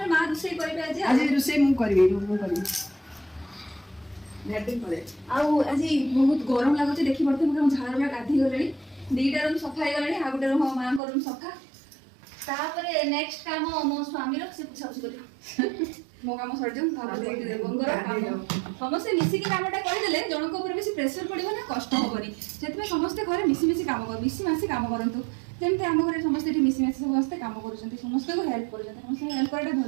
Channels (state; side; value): drops out; left; at 11.0 s